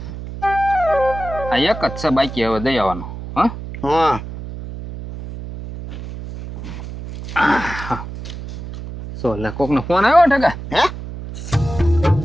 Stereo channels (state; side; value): noise; right; hum, 10 dB below the sound